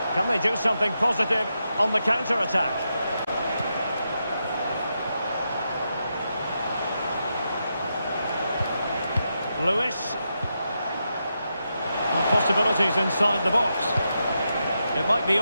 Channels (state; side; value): inverted; both; correlation -0.85